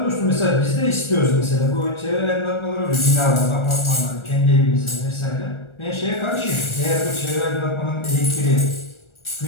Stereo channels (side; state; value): right; late; 1.4 ms